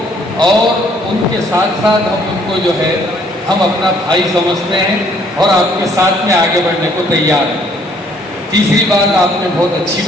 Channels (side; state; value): both; normal; correlation 0.63